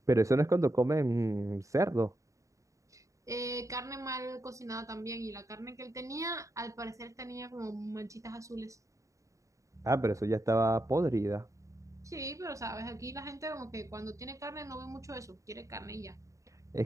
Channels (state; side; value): late; left; 0.16 ms